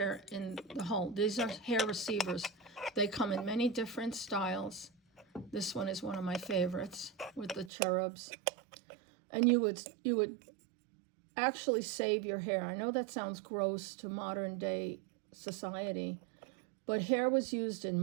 in the hole. These are hair receivers. They come in many different styles. This one is one of my favorites with the cherubs. And you would actually save your hair. I know that sounds gross to modern day society, but hair was used in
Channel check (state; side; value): drops out; left; at 7.7 s